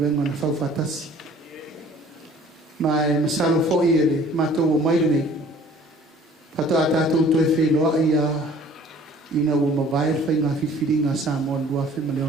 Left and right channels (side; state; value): both; normal; correlation 0.52